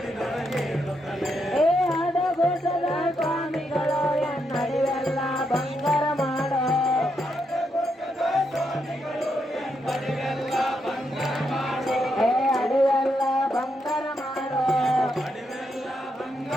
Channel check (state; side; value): normal; both; correlation 0.80